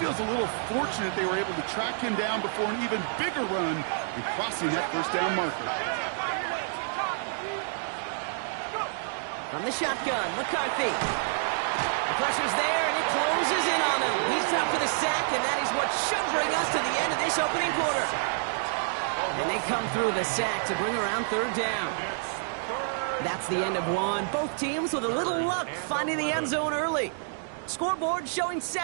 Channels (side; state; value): left; silent; digital silence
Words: feels a little fortunate they were able to track him down before an even bigger run and crossing that 1st down marker. From the shotgun, McCarthy. The pressure's there, and it closes in on him. He's up for the sack, and that is what should bring us to the end of this opening quarter. And they come through the sack to bring around 3rd down. That's the end of one. Both teams with a little luck finding the end zone early. Scoreboard showing